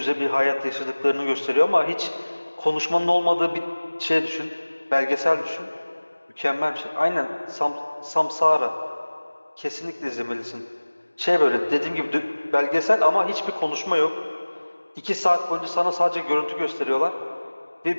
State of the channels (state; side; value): inverted; both; correlation -1.00